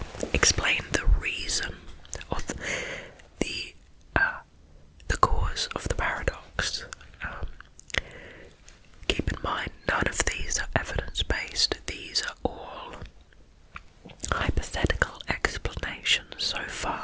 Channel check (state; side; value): identical; both; correlation 1.00